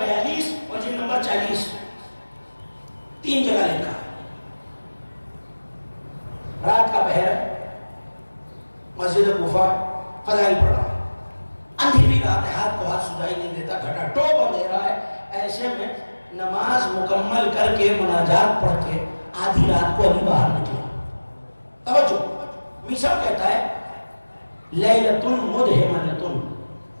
42 اور جلد نمبر 40 3 جگہ لکھا. رات کا پہر ہے، مسجد کوفہ فضائل پڑھ رہا ہے، اندھیری رات ہے، ہاتھ کو ہاتھ سجائی نہیں دیتا، گھٹا ٹوپ اندھیرا ہے. ایسے میں نماز مکمل کر کے مناجات پڑھ کے آدھی رات کو علی باہر نکلا. توجہ، میسا کہتا ہے لیلۃ مدہمۃ،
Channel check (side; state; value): both; inverted; correlation -1.00